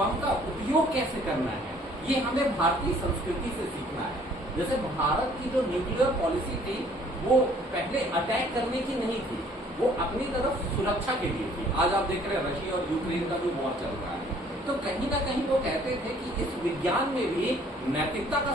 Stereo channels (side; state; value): both; normal; correlation 0.58